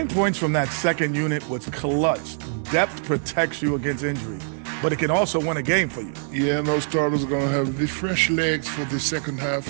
points from that second unit was clutch. Depth protects you against injury, but it can also win a game for you. Yeah, and those starters are going to have the fresh legs for the second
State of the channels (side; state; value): left; silent; 62 dB below the other